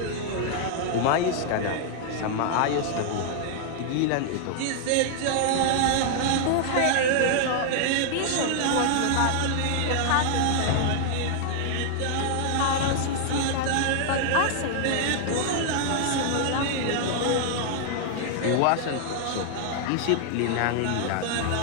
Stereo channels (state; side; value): different; both; correlation -0.01